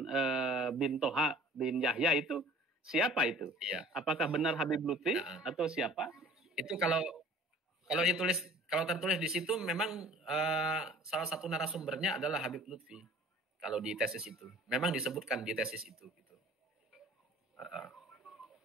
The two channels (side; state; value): both; normal; correlation 0.48